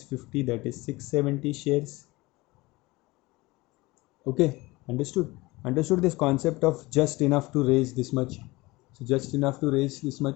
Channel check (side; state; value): right; quieter; 21.6 dB